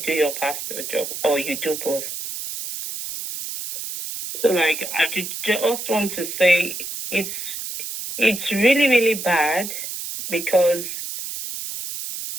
do your pastor job or you do both. So like I just want to say it's really, really bad because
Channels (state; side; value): noise; right; hiss, 7 dB below the sound